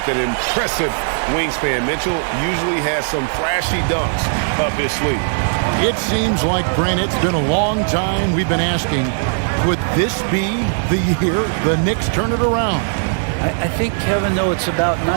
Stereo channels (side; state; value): left; silent; digital silence